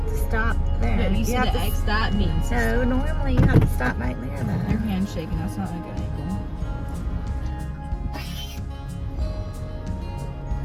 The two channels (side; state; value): both; identical; correlation 1.00